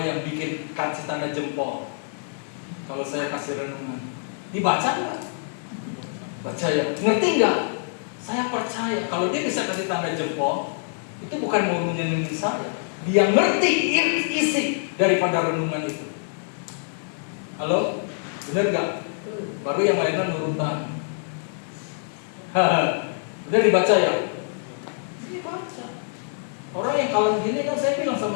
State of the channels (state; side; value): silent; right; digital silence